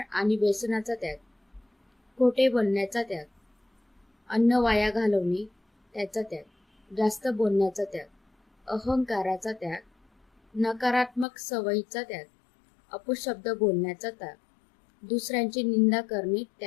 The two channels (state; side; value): drops out; right; at 11.2 s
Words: आणि व्यसनाचा त्याग, खोटे बोलण्याचा त्याग, अन्न वाया घालवणे त्याचा त्याग, जास्त बोलण्याचा त्याग, अहंकाराचा त्याग, नकारात्मक सवयीचा त्याग, अपशब्द बोलण्याचा त्याग, दुसऱ्यांची निंदा करणे